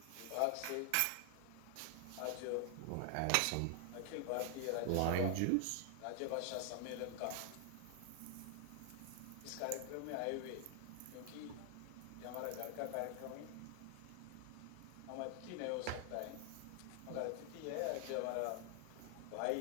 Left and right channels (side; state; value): both; different; correlation 0.00